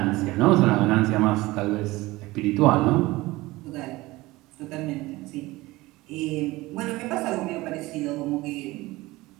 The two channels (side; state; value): left; quieter; 19.8 dB